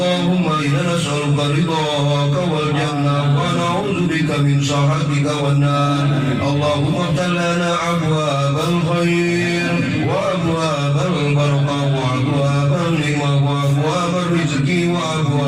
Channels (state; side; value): identical; both; correlation 1.00